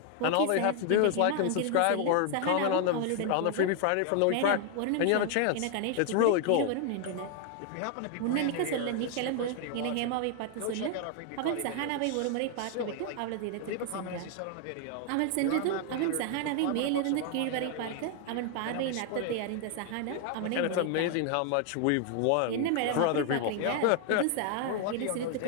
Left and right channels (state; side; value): different; both; correlation 0.00